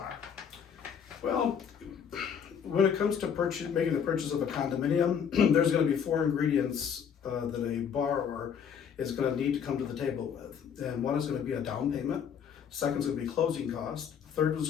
Well, when it comes to making the purchase of a condominium, there's going to be four ingredients that a borrower is going to need to come to the table with. And one is going to be a down payment. Second is going to be closing costs. Third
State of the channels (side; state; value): right; quieter; 7.6 dB